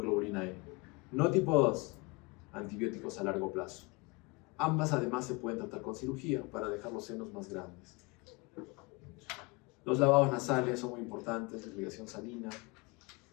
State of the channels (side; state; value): right; quieter; 27.2 dB